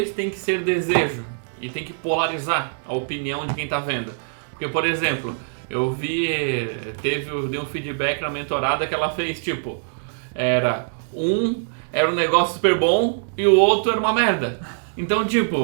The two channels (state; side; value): silent; left; digital silence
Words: tem que ser desejo e tem que polarizar a opinião de quem tá vendo. Porque, por exemplo, eu dei um feedback na mentorada que ela fez, tipo, era um negócio super bom e o outro era uma merda. Então,